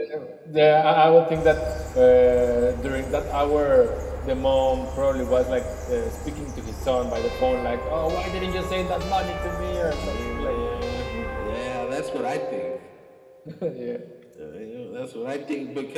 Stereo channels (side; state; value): both; identical; correlation 1.00